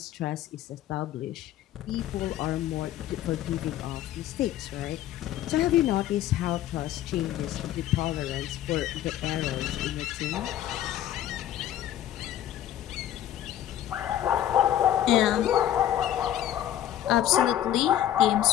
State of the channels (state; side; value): quieter; right; 12.0 dB